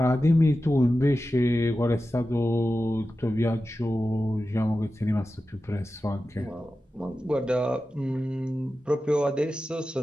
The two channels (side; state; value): both; normal; correlation 0.93